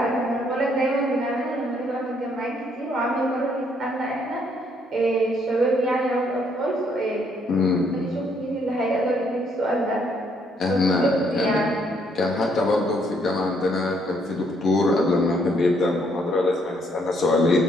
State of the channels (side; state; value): both; normal; correlation 0.69